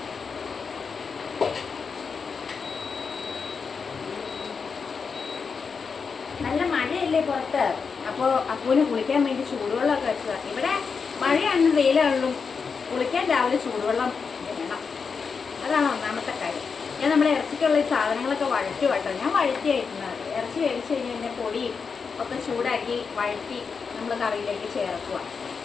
നല്ല മഴയല്ലേ പുറത്ത്, അപ്പോൾ അപ്പൂന് കുളിക്കാൻ വേണ്ടി ചൂടുവെള്ളമൊക്കെ വെച്ചതാണ്. ഇവിടെ മഴയാണെന്നും വെയിലാണെന്നും കുളിക്കാൻ രാവിലെ ചൂടുവെള്ളം വേണം. അതാണ് ഒന്നാമത്തെ കാര്യം. ഞാൻ നമ്മുടെ ഇറച്ചിക്കുള്ള ഈ സാധനങ്ങളൊക്കെ വഴറ്റി കേട്ടോ. ഞാൻ വഴറ്റിയായിരുന്നത് ഇറച്ചി വേവിച്ച് കഴിഞ്ഞാൽ പൊടിയും ഒക്കെ ചൂടാക്കി വഴറ്റി നമ്മൾ കറിയിലേക്ക് ചേർക്കുക.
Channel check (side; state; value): right; quieter; 5.5 dB